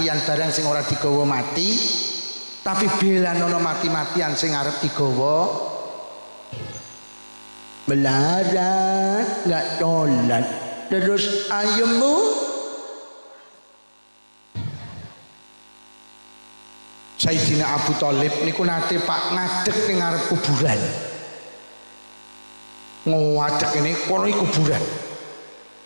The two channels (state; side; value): inverted; both; correlation -1.00